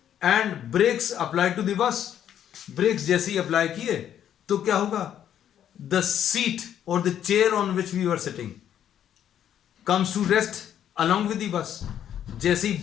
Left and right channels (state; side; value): quieter; right; 10.1 dB